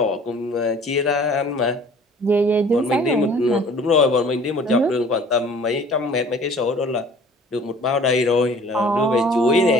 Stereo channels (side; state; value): both; normal; correlation 0.50